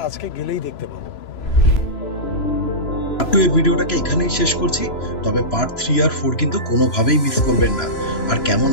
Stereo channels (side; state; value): right; late; 3.0 ms